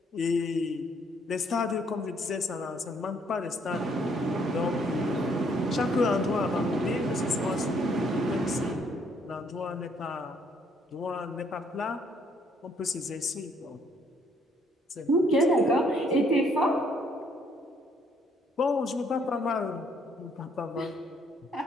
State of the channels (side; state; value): both; normal; correlation 0.67